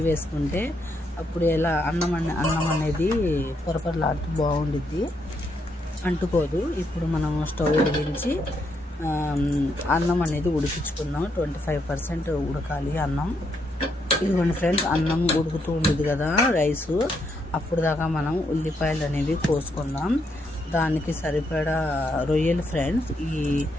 వేసుకుంటే అప్పుడు ఎలా అన్నం అనేది పొరపరలాడుతూ బాగుండిద్ది అంటుకోదు ఇప్పుడు మనం స్టవ్ వెలిగించి అన్నం అనేది ఉడికించుకుందాం 25% ఉడకాలి అన్నం ఇదిగోండి ఫ్రెండ్స్ అన్నం ఉడుకుతూ ఉండేది కదా రైసు అప్పుడు దాకా మనం ఉల్లిపాయలు అనేవి కోసుకుందాం దానికి సరిపడా రొయ్యలు ఫ్రెండ్స్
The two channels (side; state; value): both; normal; correlation 0.77